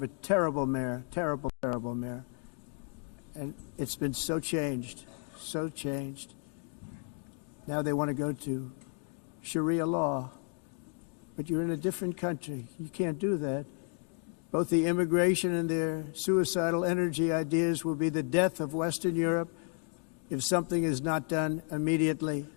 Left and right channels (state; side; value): quieter; right; 38.6 dB